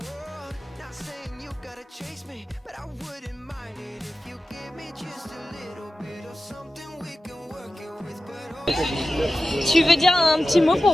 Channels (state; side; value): normal; both; correlation 0.94